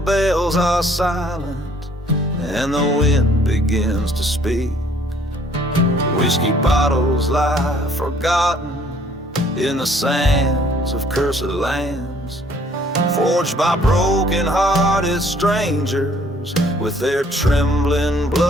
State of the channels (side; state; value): both; normal; correlation 0.60